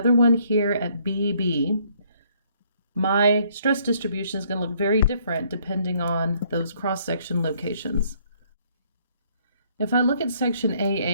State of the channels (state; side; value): inverted; both; correlation -0.65